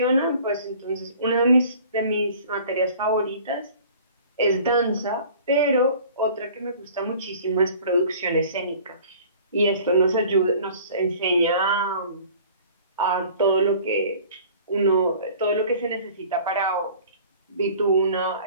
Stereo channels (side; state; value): both; inverted; correlation -0.48